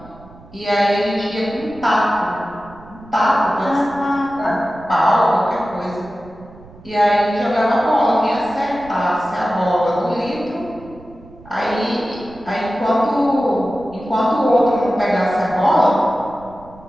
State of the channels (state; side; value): noise; right; rumble, 21 dB below the sound